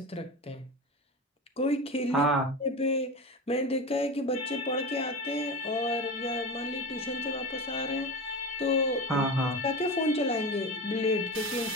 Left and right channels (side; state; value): both; normal; correlation 0.25